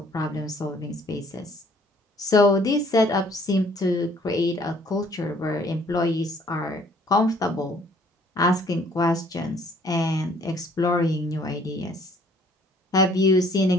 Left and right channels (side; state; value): both; normal; correlation 0.59